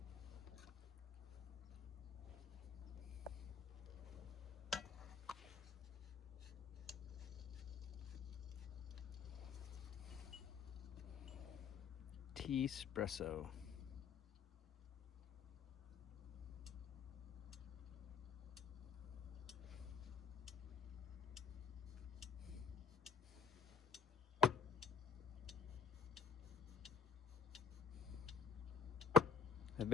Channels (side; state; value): right; quieter; 5.8 dB